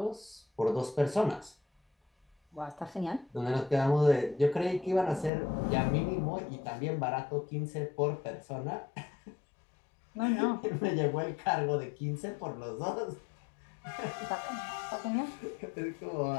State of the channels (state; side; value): drops out; right; at 5.3 s